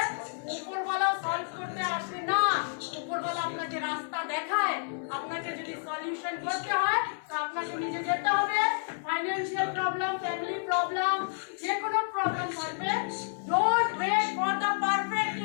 উপরওয়ালাও সলভ করতে আসে না, উপরওয়ালা আপনাকে রাস্তা দেখায়, আপনাকে যদি সলিউশন করতে হয় তো আপনাকে নিজে যেতে হবে। ফাইন্যান্সিয়াল প্রবলেম, ফ্যামিলি প্রবলেম, যে কোনো প্রবলেম থাকবে, don't wait for the perfect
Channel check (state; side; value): silent; right; 58 dB below the other